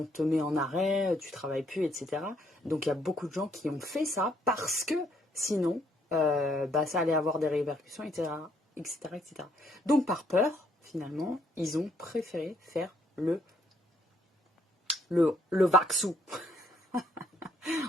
te met en arrêt, tu travailles plus, etc. Donc il y a beaucoup de gens qui ont fait ça parce que sinon, ça allait avoir des répercussions, etc., etc., etc. Donc par peur, finalement, ils ont préféré faire le vaccin.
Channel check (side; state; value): both; normal; correlation 0.69